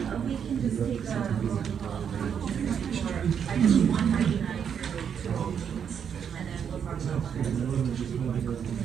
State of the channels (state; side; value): quieter; left; 7.8 dB